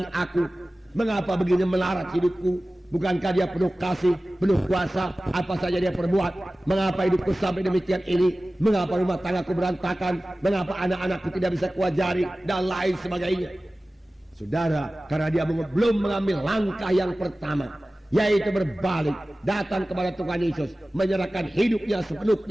aku, mengapa begini melarat hidupku? Bukankah dia penuh kasih, penuh kuasa, apa saja dia perbuat? Mengapa hidupku sampai demikian ini? Mengapa rumah tanggaku berantakan? Mengapa anak-anakku tidak bisa kuajari? Dan lain sebagainya. Saudara, karena dia belum mengambil langkah yang pertama, yaitu berbalik, datang kepada Tuhan Yesus, menyerahkan hidupnya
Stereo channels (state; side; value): normal; both; correlation 0.97